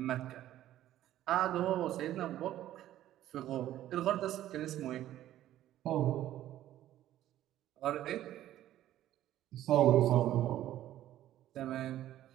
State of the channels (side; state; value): left; quieter; 13.1 dB